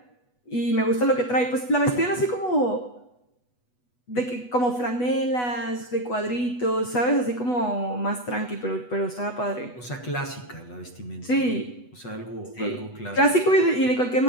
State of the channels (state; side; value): late; right; 8.1 ms